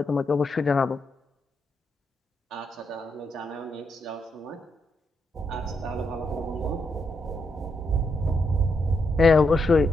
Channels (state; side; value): normal; both; correlation 0.80